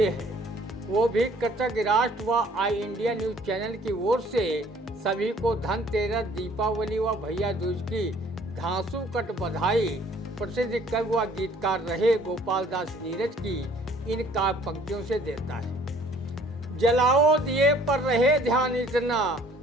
है। वो भी कृतज्ञ राष्ट्र व आई इंडिया न्यूज चैनल की ओर से सभी को धनतेरस, दीपावली व भैया दूज की घासू कट बधाई। प्रसिद्ध कवि व गीतकार रहे गोपाल दास नीरज की इन काव्य पंक्तियों से देता है। जलाओ दिए पर रहे ध्यान इतना,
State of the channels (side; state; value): both; normal; correlation 0.57